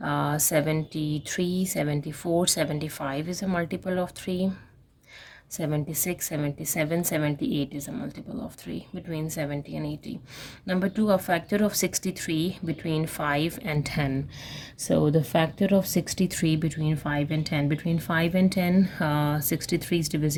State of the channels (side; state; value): both; identical; correlation 1.00